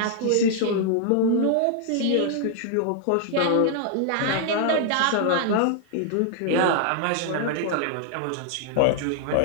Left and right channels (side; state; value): both; different; correlation 0.00